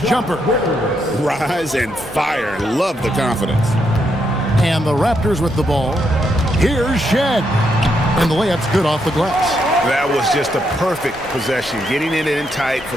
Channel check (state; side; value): normal; both; correlation 0.78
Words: jumper. Rise and fire. Love the confidence. And the Raptors with the ball. Here's Shed. And the layup's good off the glass. That was just a perfect possession, getting it in tight for